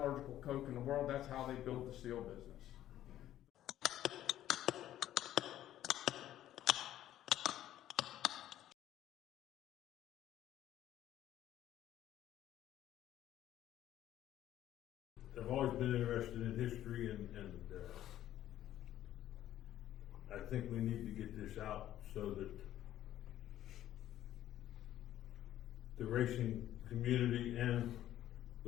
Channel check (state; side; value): quieter; right; 12.6 dB